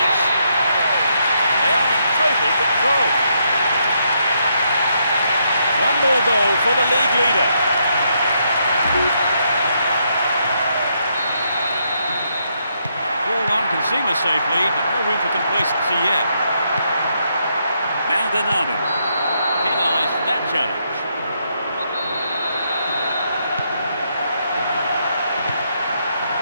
They are in total control. One more goal for the league leader. Can seem a safe lead, but no room for complacency yet. Maldonado penalised for that challenge.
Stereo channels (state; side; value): inverted; both; correlation -0.77